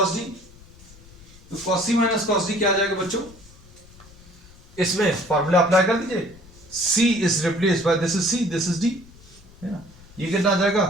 d, तो cos c minus cos d क्या आ जाएगा बच्चों, इसमें फॉर्मूला अप्लाई कर दीजिए, c is replaced by this is c, this is d, है ना। ये कितना आ जाएगा,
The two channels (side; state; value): left; noise; rumble, 23 dB below the sound